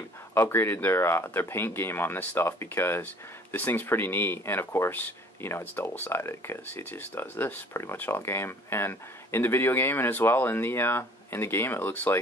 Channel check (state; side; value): normal; both; correlation 0.52